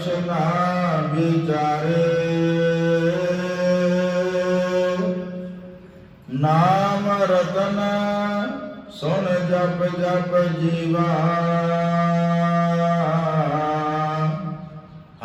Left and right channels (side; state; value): both; identical; correlation 1.00